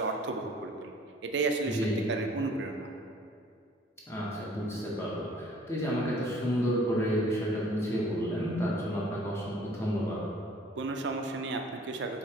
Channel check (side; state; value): both; normal; correlation 0.54